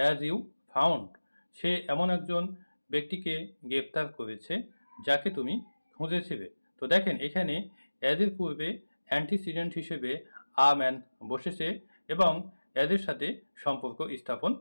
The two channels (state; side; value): inverted; both; correlation -1.00